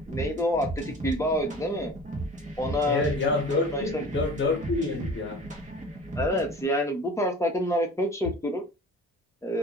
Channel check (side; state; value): both; normal; correlation 0.42